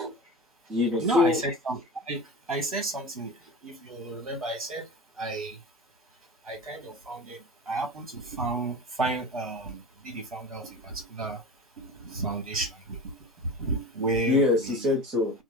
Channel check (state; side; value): normal; both; correlation 0.32